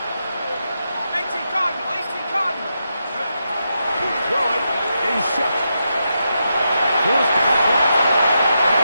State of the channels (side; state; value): both; inverted; correlation -0.85